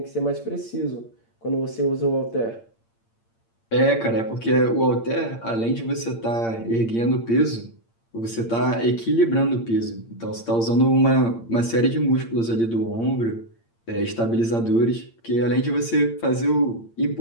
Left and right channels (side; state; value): right; late; 8.7 ms